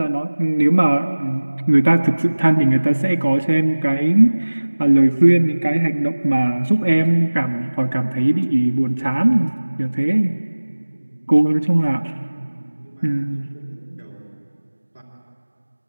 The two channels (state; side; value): inverted; both; correlation -1.00